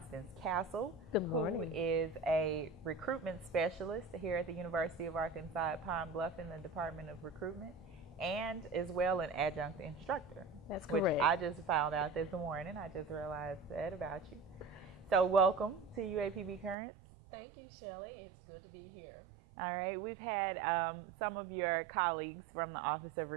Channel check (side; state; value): left; drops out; at 16.8 s